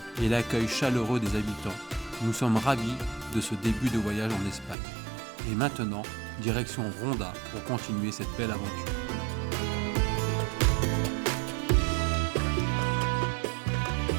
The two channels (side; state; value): left; drops out; at 4.8 s